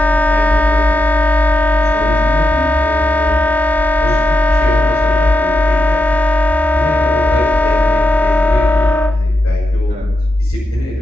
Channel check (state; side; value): normal; both; correlation 0.87